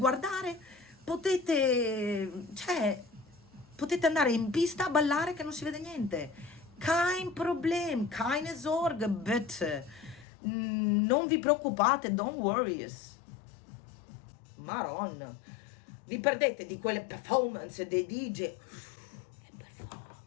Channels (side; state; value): right; drops out; at 10.2 s